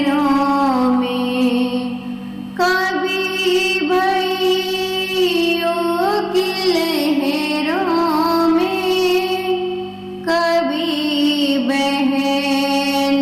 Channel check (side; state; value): both; identical; correlation 1.00